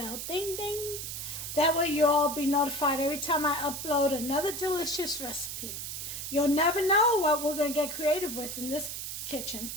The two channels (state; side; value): noise; right; hiss, 6 dB below the sound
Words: Ding, ding. That way you'll all be notified every time I upload another delicious recipe. You'll never know what we're going to get creative with in this kitchen.